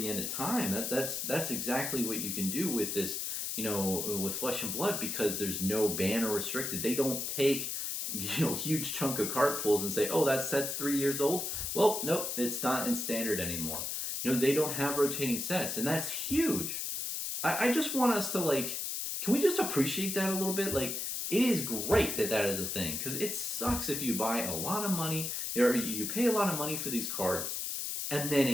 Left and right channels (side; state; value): left; noise; hiss, 3 dB below the sound